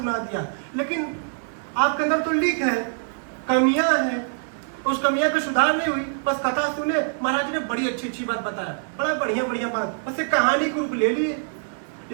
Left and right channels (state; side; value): silent; left; 62 dB below the other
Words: दिया, लेकिन आपके अंदर तो लीक है, कमियां हैं, उस कमियां पे सुधार नहीं हुई। बस कथा सुने, महाराज ने बड़ी अच्छी अच्छी बात बताया, बड़ा बढ़िया बढ़िया बात, बस एक कहानी के रूप ले लिए।